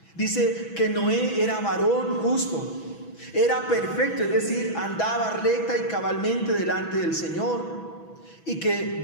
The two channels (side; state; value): right; late; 6.1 ms